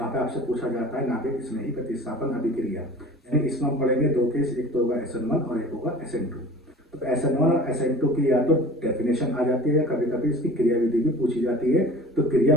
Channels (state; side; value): normal; both; correlation 0.41